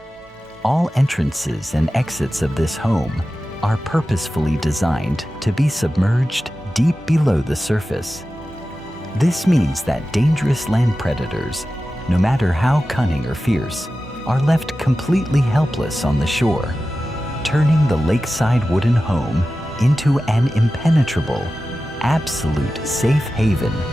All entrances and exits of this home are purposefully designed to be submerged deep below the surface. This means that dangerous land predators, no matter how cunning or fierce, are left completely helpless on the shore, turning the lakeside wooden home into an impenetrable, absolute safe haven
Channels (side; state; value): both; normal; correlation 0.94